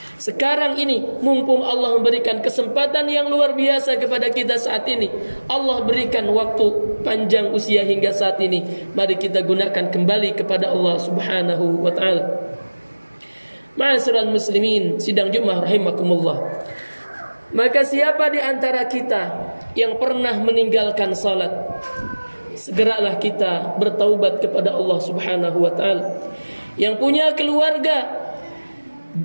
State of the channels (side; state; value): both; inverted; correlation -1.00